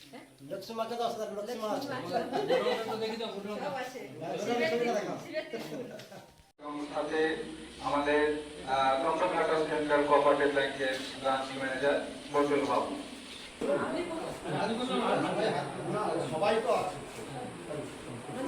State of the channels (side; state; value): both; identical; correlation 1.00